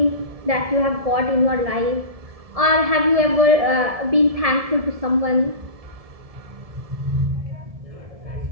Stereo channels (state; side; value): late; left; 1.7 ms